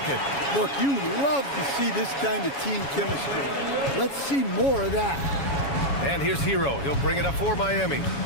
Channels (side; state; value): right; late; 7.2 ms